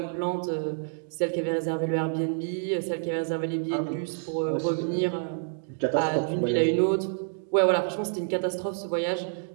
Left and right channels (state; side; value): silent; left; digital silence